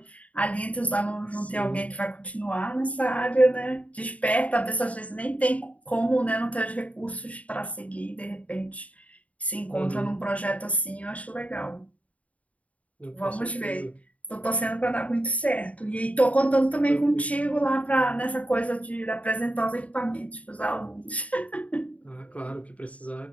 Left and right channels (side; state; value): right; late; 0.068 ms